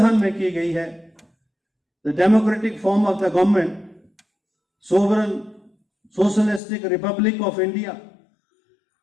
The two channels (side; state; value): right; drops out; at 6.6 s